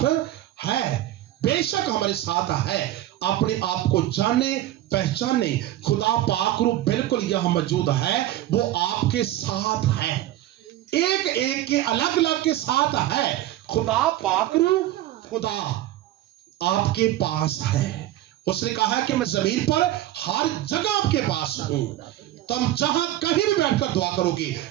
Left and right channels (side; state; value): left; quieter; 14.1 dB